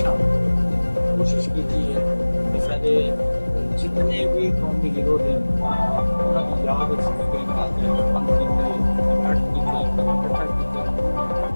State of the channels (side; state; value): both; inverted; correlation -1.00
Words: کوشش کی ہے کہ سارے جتنے بھی قومی ہیرو ہیں انہوں کی یاد